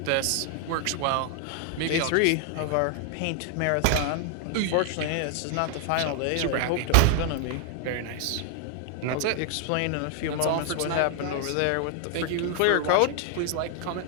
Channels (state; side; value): different; both; correlation 0.00